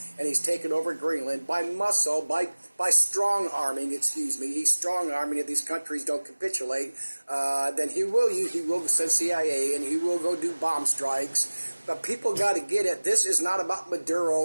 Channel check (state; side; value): inverted; both; correlation -1.00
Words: and he's taken over Greenland by muscle, by strong arming, He's strong arming. If these countries don't capitulate, then he will send CIA, and he will go do bomb strikes. But people got to get it. This is not about